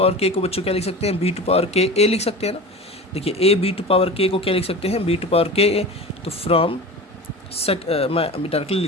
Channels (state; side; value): normal; both; correlation 0.32